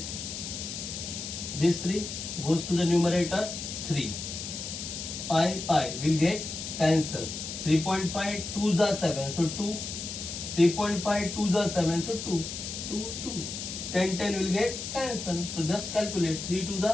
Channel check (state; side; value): noise; left; hiss, 7 dB below the sound